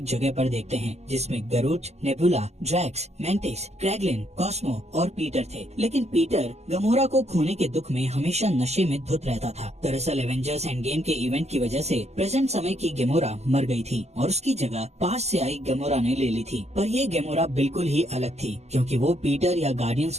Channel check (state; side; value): late; left; 0.32 ms